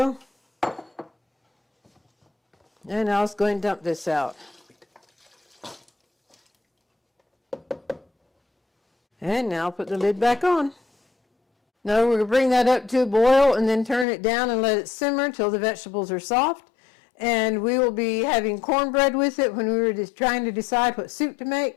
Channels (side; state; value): right; drops out; at 14.1 s